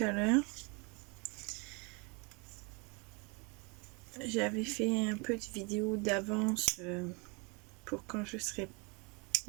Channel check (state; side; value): quieter; left; 31.0 dB